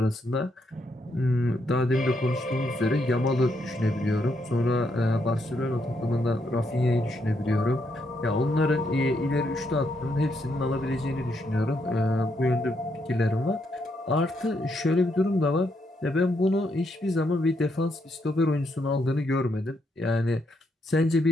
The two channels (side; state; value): both; normal; correlation 0.77